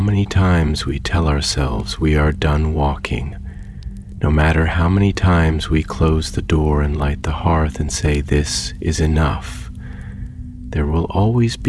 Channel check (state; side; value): identical; both; correlation 1.00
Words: times we tell ourselves we are done walking, no matter how many times we close the door and light the hearth and say this is enough, there will always